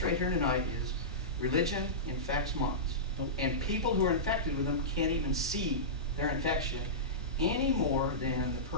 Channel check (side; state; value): both; normal; correlation -0.18